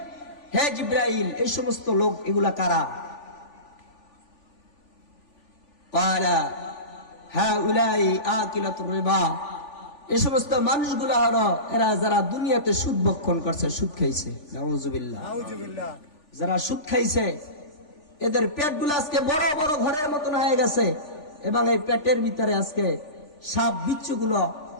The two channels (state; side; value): late; right; 3.4 ms